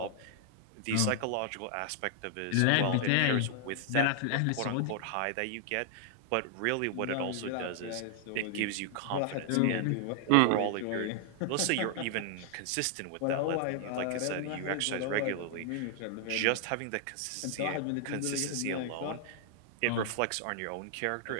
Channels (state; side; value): different; both; correlation 0.00